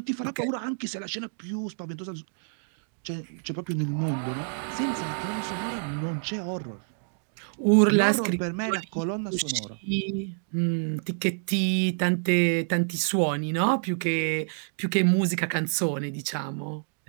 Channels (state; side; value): silent; left; digital silence